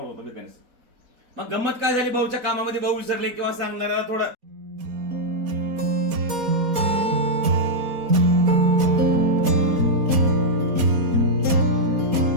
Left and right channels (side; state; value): left; late; 4.2 ms